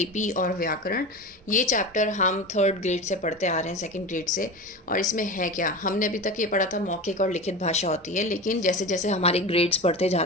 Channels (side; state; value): both; normal; correlation 0.27